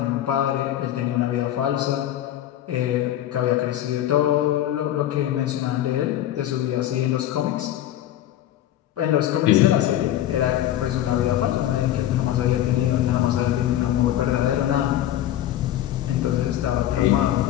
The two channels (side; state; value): right; quieter; 12.5 dB